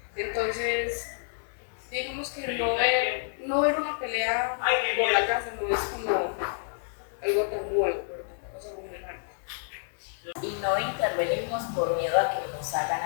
Entonces, digamos que no ver una pelea por la casa no es como algo tan nuevo, pero tampoco es algo muy raro. Y no intervenimos por miedo a que nos hagan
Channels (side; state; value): right; silent; digital silence